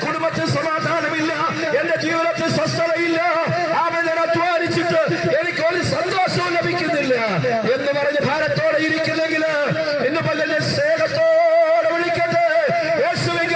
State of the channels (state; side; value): identical; both; correlation 1.00